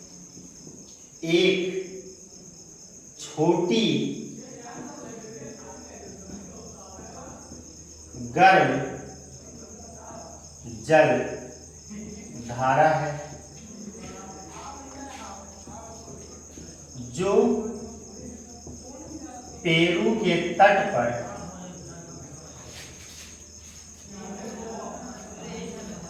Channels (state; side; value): identical; both; correlation 1.00